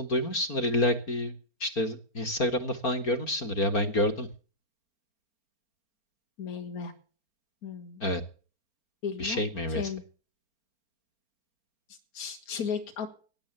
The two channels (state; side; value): late; right; 4.4 ms